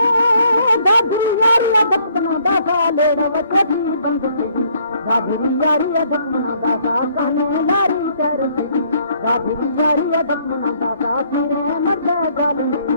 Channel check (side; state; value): both; inverted; correlation -0.65